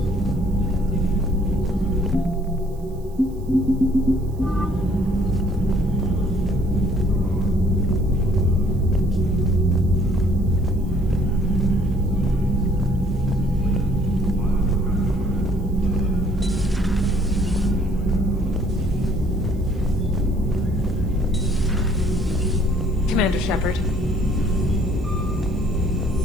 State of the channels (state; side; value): noise; right; hiss, 30 dB below the sound